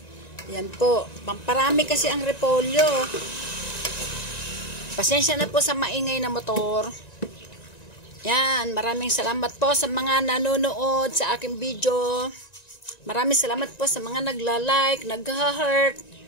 Yan po. Pamparami kasi ang repolyo. Pasensya na po sa maingay na motor. Yan. Maraming salamat po sa mga nanonood sa aking video. Maraming salamat po sa mga nagla-like, nag-heart,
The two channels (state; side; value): late; right; 1.9 ms